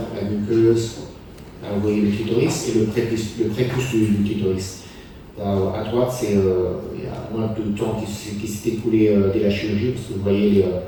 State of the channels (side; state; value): both; identical; correlation 1.00